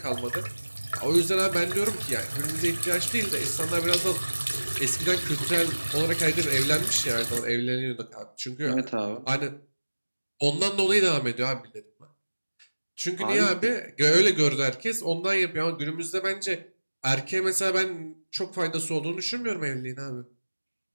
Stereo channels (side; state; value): both; inverted; correlation -1.00